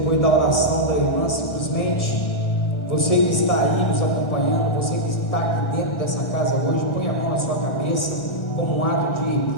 da oração da irmã, simplesmente, você que está aí nos acompanhando, você que está aqui dentro dessa casa hoje, põe a mão na sua cabeça como um ato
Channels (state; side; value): late; right; 1.5 ms